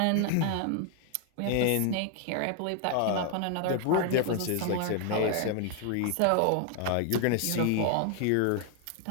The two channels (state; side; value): different; both; correlation 0.00